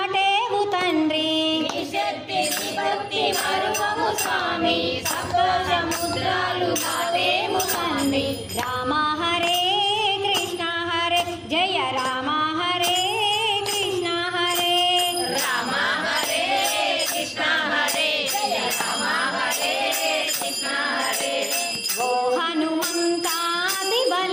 తండ్రి. నీ శక్తి నీ భక్తి మరువము స్వామి, సప్త సముద్రాలు దాటేము తండ్రి. రామ హరే కృష్ణ హరే జయ రామ హరే కృష్ణ హరే. రామ హరే కృష్ణ హరే జయ రామ హరే కృష్ణ హరే. ఓ హనుమంత అతి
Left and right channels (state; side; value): identical; both; correlation 1.00